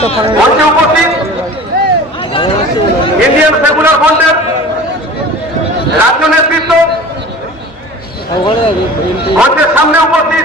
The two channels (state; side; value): normal; both; correlation 0.40